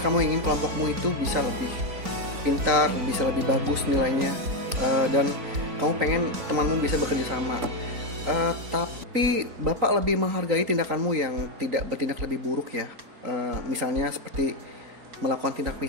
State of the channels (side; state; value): left; late; 4.3 ms